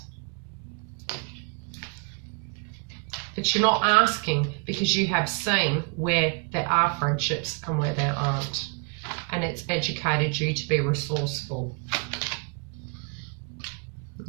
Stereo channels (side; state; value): left; quieter; 35.6 dB